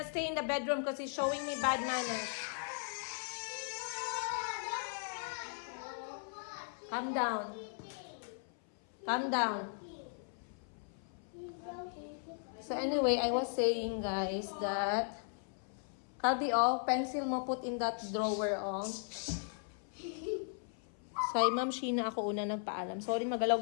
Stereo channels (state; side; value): silent; right; 53 dB below the other